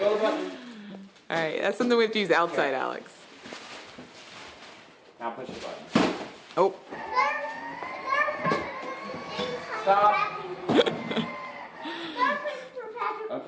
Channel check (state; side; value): identical; both; correlation 1.00